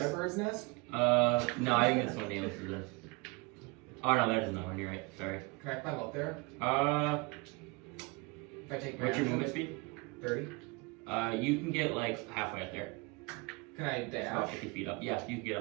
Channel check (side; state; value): left; quieter; 27.3 dB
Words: bird's nest? No, I think that's what Naileth is. Oh no, that is another one. You're right. Sorry. Can I climb up there? If If I take my what's your action? movement speed? 30. You can get like halfway up there. Can I About dash? 50 feet up. Yeah, you can get